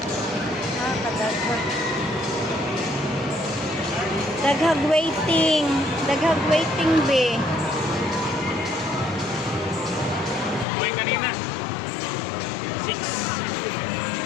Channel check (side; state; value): right; drops out; at 10.7 s